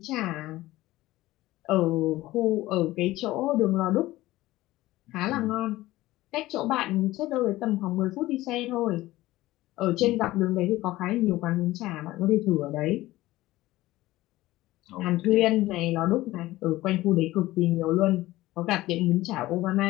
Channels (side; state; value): right; quieter; 17.3 dB